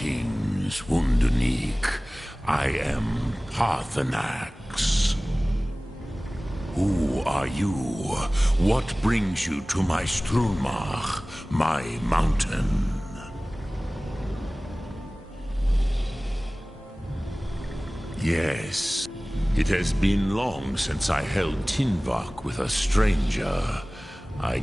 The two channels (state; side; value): normal; both; correlation 0.98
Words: Wunderneek. I am Paarthurnax. Who are you? What brings you to my Strunmach, my mountain? Yes, it has been long since I held Tinvak with a stranger. I